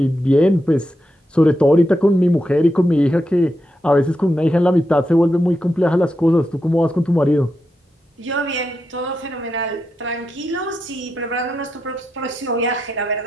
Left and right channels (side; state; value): both; normal; correlation 0.86